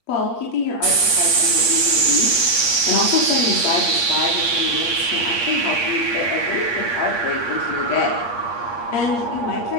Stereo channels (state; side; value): late; right; 8.5 ms